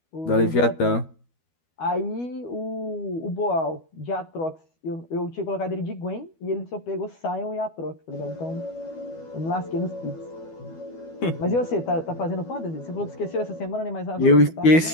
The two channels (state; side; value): late; right; 12 ms